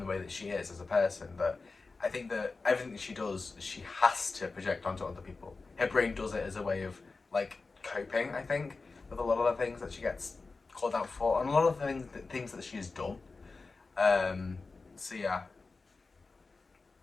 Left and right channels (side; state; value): right; quieter; 4.0 dB